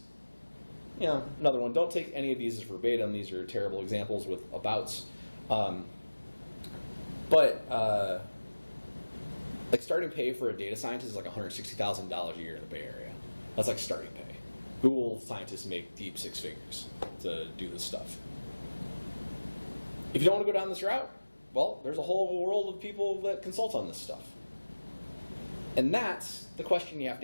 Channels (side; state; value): both; inverted; correlation -1.00